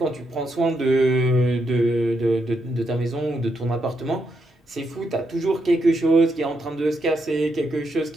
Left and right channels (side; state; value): both; normal; correlation 0.80